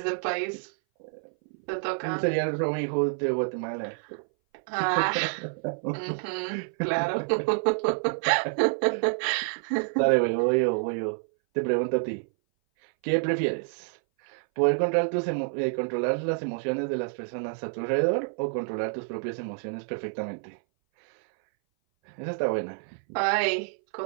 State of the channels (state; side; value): silent; left; 58 dB below the other